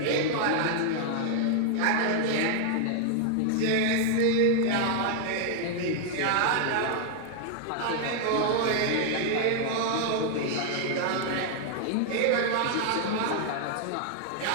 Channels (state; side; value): different; both; correlation 0.00